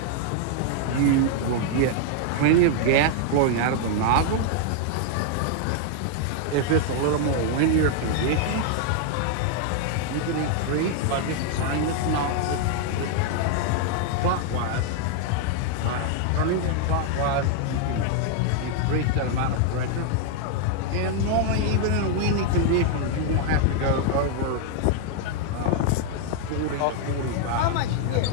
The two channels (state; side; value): different; both; correlation 0.00